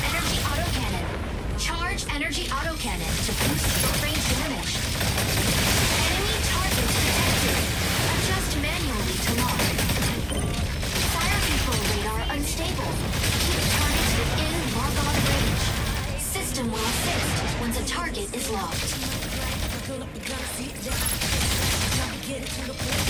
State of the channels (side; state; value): both; identical; correlation 1.00